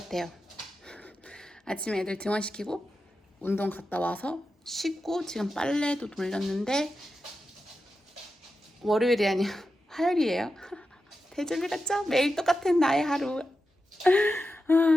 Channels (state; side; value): normal; both; correlation 0.90